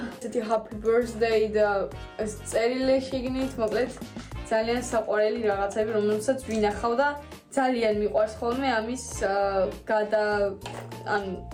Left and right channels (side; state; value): both; identical; correlation 1.00